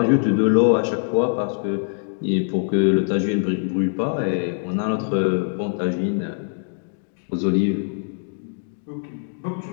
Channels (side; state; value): right; silent; digital silence